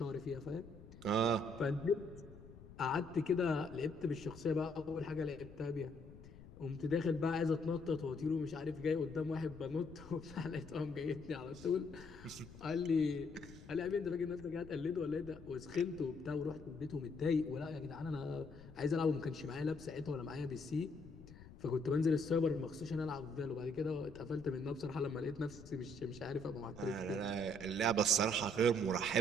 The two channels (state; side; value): noise; left; rumble, 17 dB below the sound